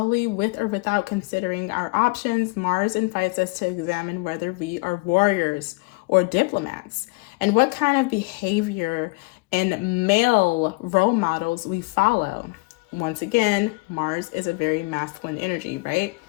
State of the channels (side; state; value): right; quieter; 26.9 dB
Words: with or without considering our options. Mars invites us to examine whether we are warriors or diplomats, and what kind of behavior and male role models we follow. Once again, Mars is a very masculine energy, right?